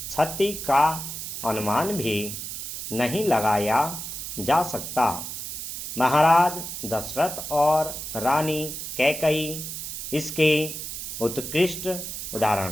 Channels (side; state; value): right; noise; hiss, 7 dB below the sound